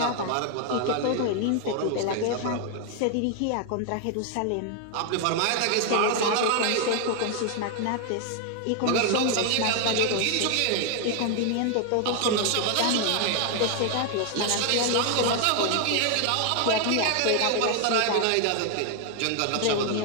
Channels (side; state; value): both; different; correlation 0.00